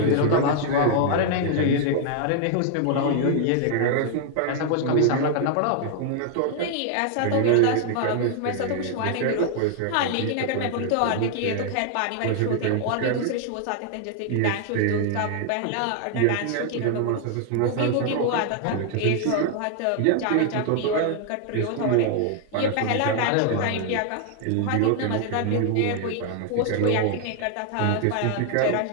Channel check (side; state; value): both; different; correlation 0.00